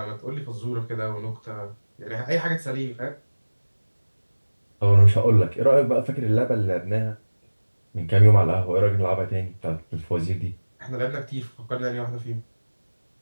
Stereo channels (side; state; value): both; inverted; correlation -1.00